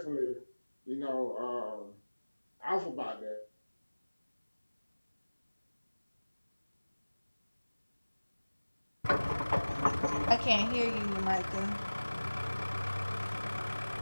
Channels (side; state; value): both; inverted; correlation -1.00